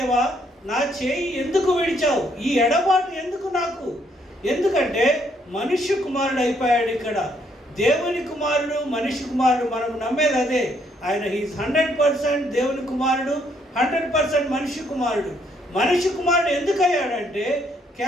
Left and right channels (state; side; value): normal; both; correlation 0.70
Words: నా చేయి ఎందుకు విడిచావు? ఈ ఎడబాటు ఎందుకు నాకు? ఎందుకంటే మనుష్య కుమారుడు అయిపోయాడు ఇక్కడ. దేవుని కుమారుడు, మనిషి కుమారుడు. మనం నమ్మేది అదే. ఆయన హీస్ 100% దేవుని కుమారుడు, 100% మనిషి కుమారుడు. మనిషి కుమారుడు ఎందుకు అయ్యాడంటే